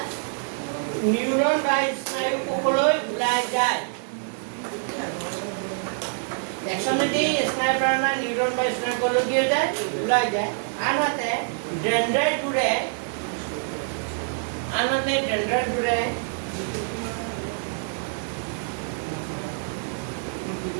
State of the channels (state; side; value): silent; left; digital silence